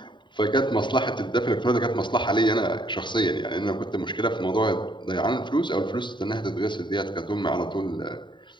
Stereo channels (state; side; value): late; right; 0.23 ms